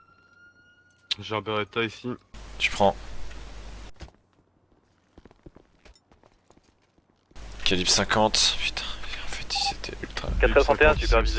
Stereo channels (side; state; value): both; identical; correlation 1.00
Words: J'ai un Beretta ici. Tu prends. Calibre 50, putain, en fait c'était ultra... 461,